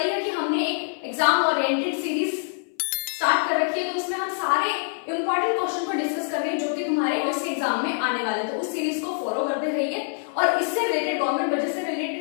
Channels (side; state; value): right; silent; 58 dB below the other